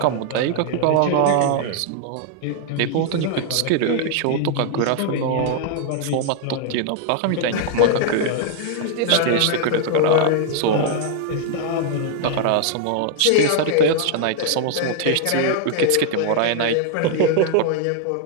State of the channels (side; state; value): both; different; correlation 0.00